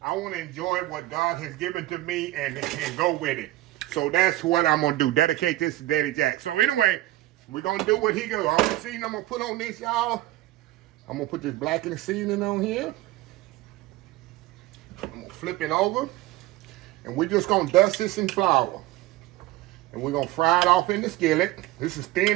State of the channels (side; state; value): left; quieter; 16.6 dB